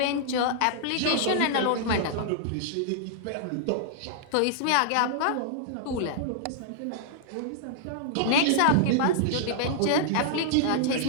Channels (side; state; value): both; different; correlation -0.01